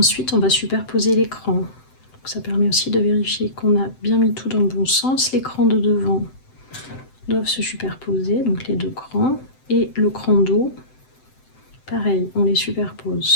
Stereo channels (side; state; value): right; late; 7.8 ms